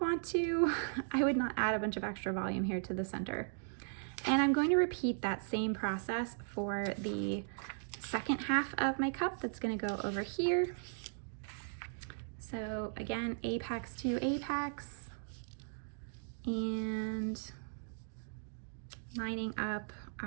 to, I would not add a bunch of extra volume here to the center. And I'm going to repeat that same process for the second half of my cup that's going to go over here. So again, apex to apex, and lining up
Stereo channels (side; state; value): left; silent; digital silence